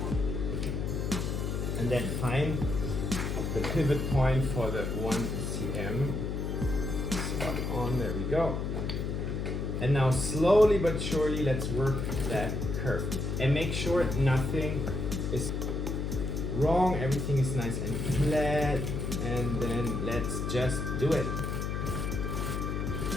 and then find the pivot point for the 1 cm. Spot on, there we go. And now slowly but surely let's work that curve. And make sure nothing is wrong, everything is nice and flat. And then let's just do it.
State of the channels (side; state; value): left; noise; hum, 2 dB below the sound